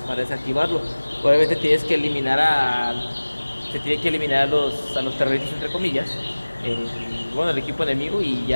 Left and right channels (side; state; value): both; inverted; correlation -1.00